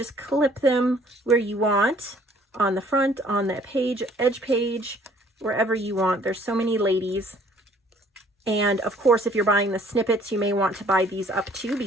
clip them where you want, on the front, on the page, edge page, wherever you want. There's so many ladies. And of course, if you're buying the snippets, you may want to buy these up too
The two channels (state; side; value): normal; both; correlation 0.58